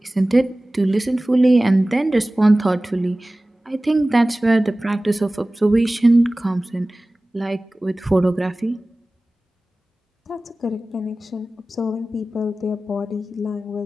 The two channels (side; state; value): both; normal; correlation 0.97